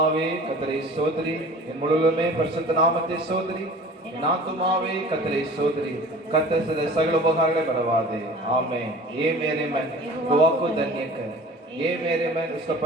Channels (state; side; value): normal; both; correlation 0.43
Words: கர்த்தரை ஸ்தோத்திரி, என் முழுவதுமே பரிசுத்த நாமத்தை ஸ்தோத்திரி. என் ஆத்துமாவே கர்த்தரை ஸ்தோத்திரி, கர்த்தர் செய்த சகல உபகாரங்களை மறவாதே. आमेन। ये मेरे मन गवाह को धन्य कर, ये मेरे मन उसका